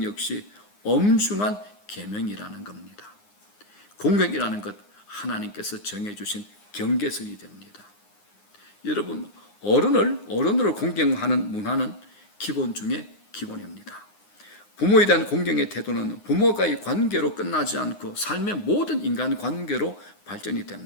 역시 엄중한 계명이라는 겁니다. 공경이라는 것, 하나님께서 정해주신 경계선이 됩니다. 여러분, 어른으로 공경하는 문화는 기본 중에 기본입니다. 부모에 대한 공경의 태도는 부모와의 관계로 끝나지 않고 삶의 모든 인간 관계로 발전이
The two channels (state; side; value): late; right; 9.7 ms